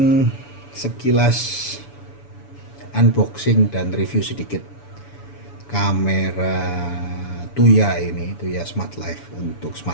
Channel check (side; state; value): right; late; 7.0 ms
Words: sekilas unboxing dan review sedikit kamera Tuya ini, Tuya Smart Life untuk